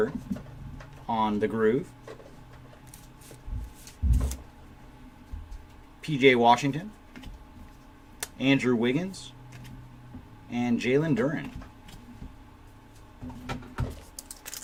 on the Groove. PJ Washington, Andrew Wiggins, and Jalen Duren.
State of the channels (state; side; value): identical; both; correlation 1.00